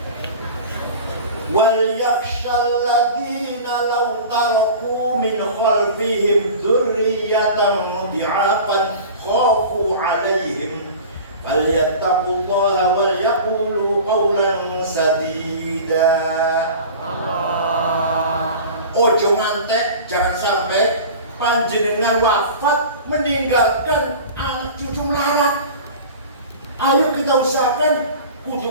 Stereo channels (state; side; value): inverted; both; correlation -0.37